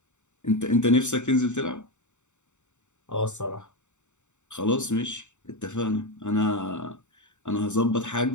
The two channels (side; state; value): right; late; 0.84 ms